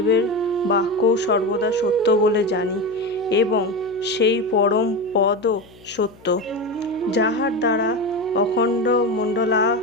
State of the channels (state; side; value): noise; left; hum, 25 dB below the sound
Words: বাক্যও সর্বদা সত্য বলে জানি এবং সেই পরম পদও সত্য, যাহার দ্বারা অখণ্ড